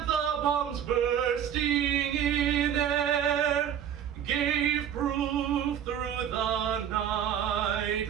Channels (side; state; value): left; quieter; 9.3 dB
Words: the bombs bursting in air, gave proof through the